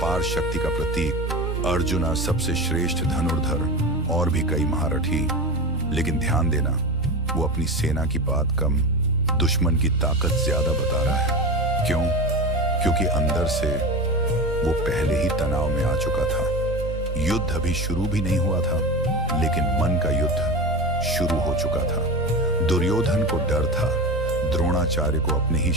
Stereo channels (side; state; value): both; normal; correlation 0.25